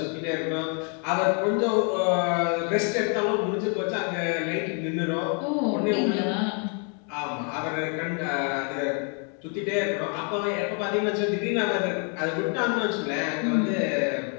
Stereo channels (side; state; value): right; quieter; 38.9 dB